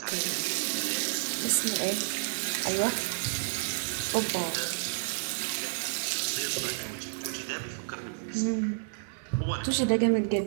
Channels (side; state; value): left; silent; digital silence